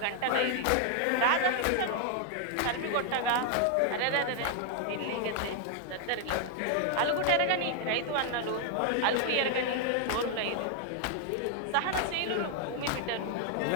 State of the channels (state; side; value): different; both; correlation 0.00